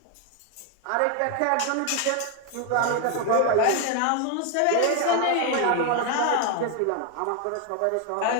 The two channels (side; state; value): both; different; correlation 0.01